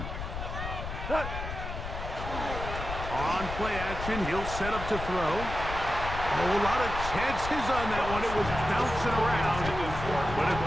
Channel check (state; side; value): noise; left; rumble, 7 dB below the sound